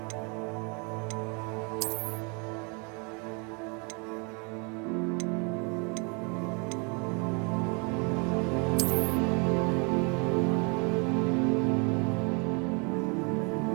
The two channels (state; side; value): quieter; left; 33.6 dB